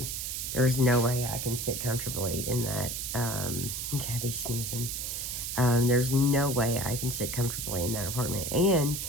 There's no way I can sit comfortably in that. Gabby's sneezing. There's no way I can sit comfortably in that apartment. And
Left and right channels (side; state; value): right; noise; hiss, 4 dB below the sound